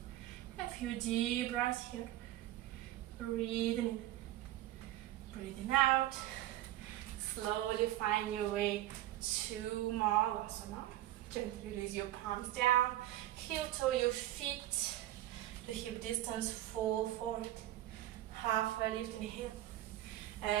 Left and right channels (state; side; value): quieter; left; 14.7 dB